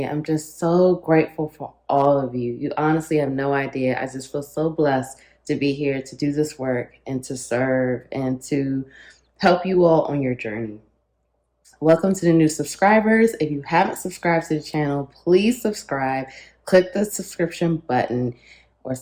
I'm just so grateful for all of you. You honestly have no idea. I just feel so blessed to be here to do this work and to serve and to help you all on your journey. Welcome to the new subscribers. If you haven't subscribed to the channel, please subscribe. Click the subscription button or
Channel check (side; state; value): both; identical; correlation 1.00